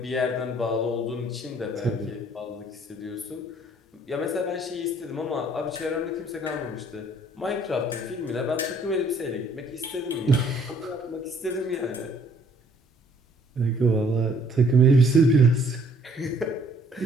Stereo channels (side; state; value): both; normal; correlation 0.61